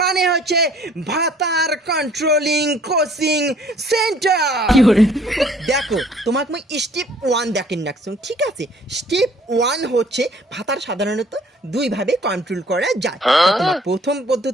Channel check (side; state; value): both; normal; correlation 0.57